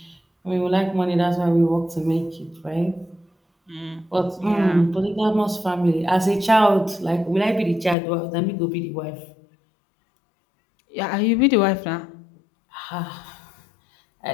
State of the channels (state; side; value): drops out; right; at 8.0 s